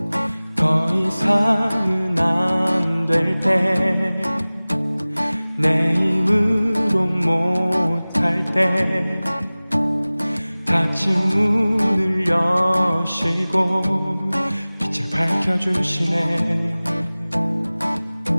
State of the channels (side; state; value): both; inverted; correlation -0.99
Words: 더 이상은 안 될 때 내 힘으로 못할 때 닫힌 문을 여시고 빛을 밝혀주시네.